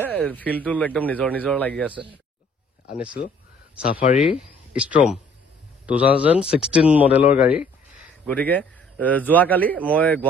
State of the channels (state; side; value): normal; both; correlation 0.58